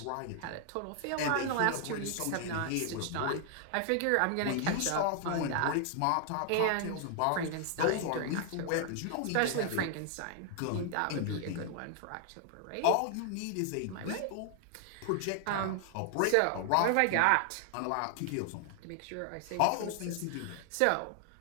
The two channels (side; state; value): both; different; correlation 0.00